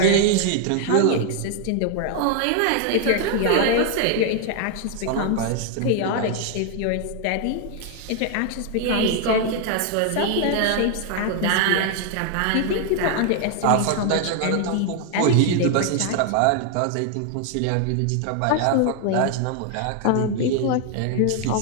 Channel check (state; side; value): different; both; correlation 0.00